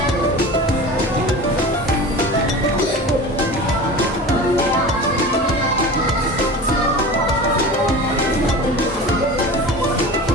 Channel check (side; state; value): both; normal; correlation 0.34